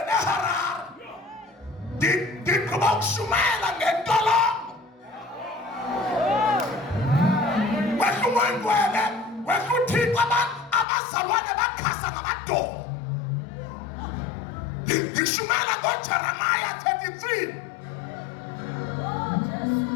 eHarare, ndigqiba ukushumayela ngentolongo. Wehla umoyingcwele, wehla uThixo, abazalwane bakhasa ngamadolo. Ngishumayela ngoJeremiah 33.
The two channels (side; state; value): right; drops out; at 10.9 s